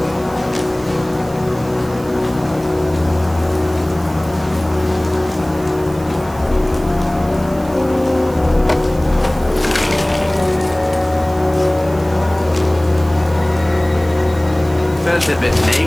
Felt a bit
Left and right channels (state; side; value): noise; right; hiss, 21 dB below the sound